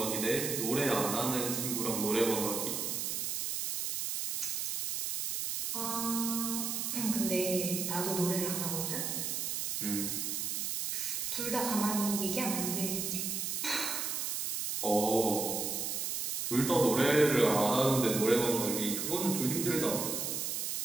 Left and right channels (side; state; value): right; noise; hiss, 1 dB below the sound